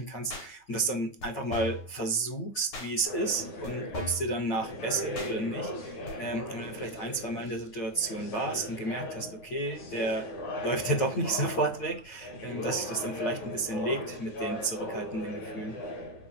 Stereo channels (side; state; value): right; late; 9.3 ms